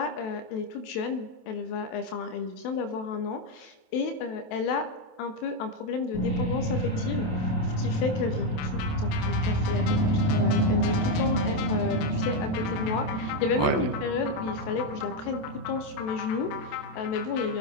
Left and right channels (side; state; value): right; late; 28 ms